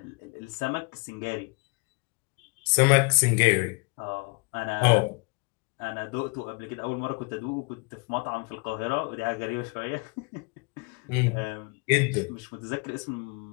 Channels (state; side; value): quieter; right; 29.9 dB